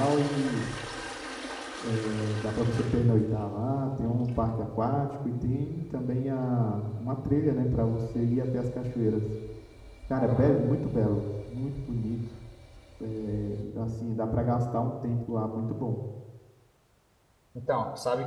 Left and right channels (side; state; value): both; identical; correlation 1.00